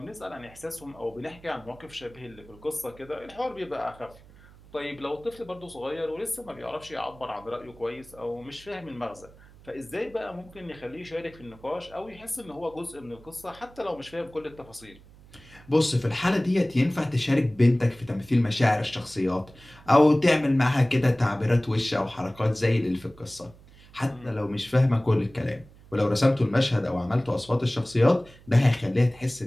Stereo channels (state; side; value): noise; right; hum, 23 dB below the sound